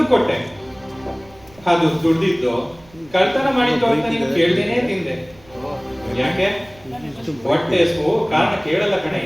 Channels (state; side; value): noise; right; rumble, 26 dB below the sound